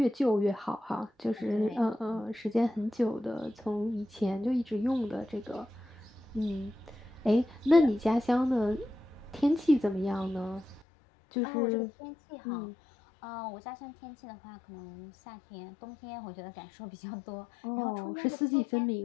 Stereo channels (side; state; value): right; drops out; at 10.9 s